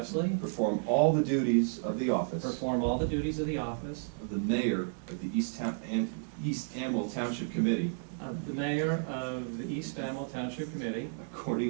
perform all the duties of the office perform all the duties of the office of the mayor of the East Amwell Township Committee of the mayor of the East Amwell Township Committee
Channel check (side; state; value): left; silent; digital silence